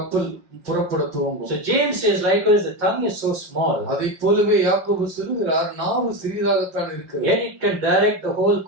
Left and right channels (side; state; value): left; late; 5.5 ms